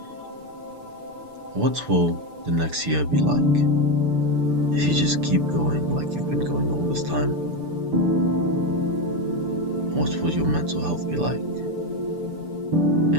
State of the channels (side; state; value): left; late; 6.8 ms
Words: What will the next year be like if you just keep going like you've been going all this time? What will your mental health be like?